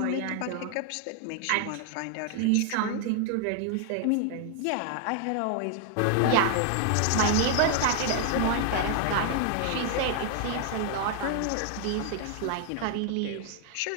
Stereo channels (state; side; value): different; both; correlation 0.00